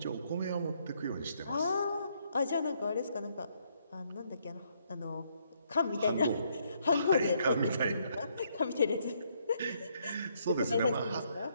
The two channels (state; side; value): inverted; both; correlation -0.72